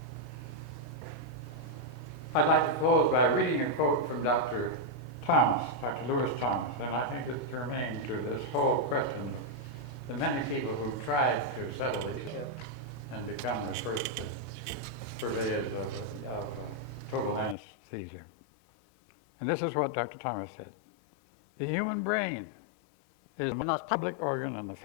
I'd like to close by reading a quote from Dr. Lewis Thomas, and I think it's germane to this whole question of the many people who tried to settle these and become the first purveyors of total anesthesia. And this is what Dr. Thomas said. The human brain is the most public organ on the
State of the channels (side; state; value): right; drops out; at 17.6 s